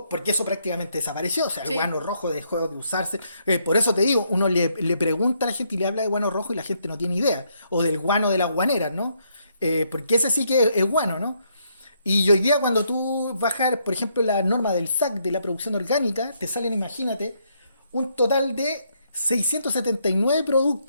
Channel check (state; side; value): inverted; both; correlation -0.73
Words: porque eso prácticamente desapareció. O sea, el Sí. guano rojo dejó de usarse. Por eso te digo, uno le pregunta a la gente y le habla de guano rojo y la gente no tiene idea. O del guano de las guaneras, ¿no? Porque ese sí que es guano, ¿no? Y hoy día cuando tú bajas, por ejemplo, la norma del SAC de la producción orgánica, te salen, imagínate, un total de 679